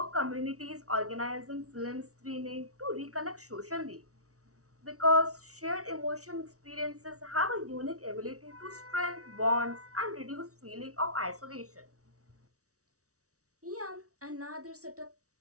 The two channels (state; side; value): late; left; 0.65 ms